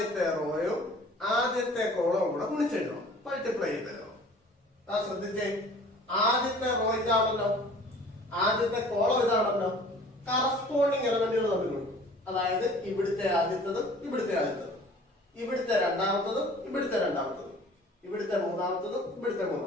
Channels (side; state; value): both; normal; correlation 0.48